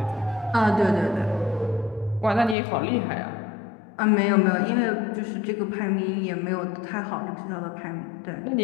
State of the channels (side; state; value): right; drops out; at 2.6 s